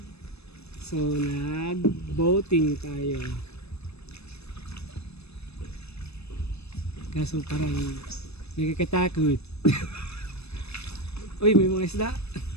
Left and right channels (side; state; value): right; late; 0.79 ms